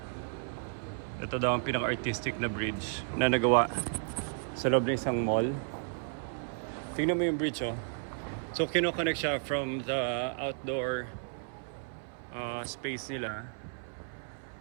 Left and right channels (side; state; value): left; silent; 56 dB below the other